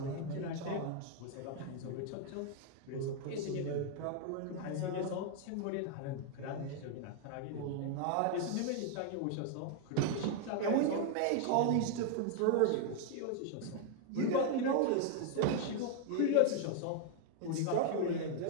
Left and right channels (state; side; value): different; both; correlation 0.00